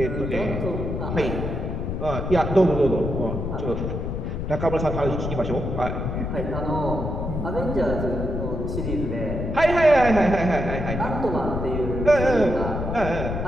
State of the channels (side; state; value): left; noise; rumble, 3 dB below the sound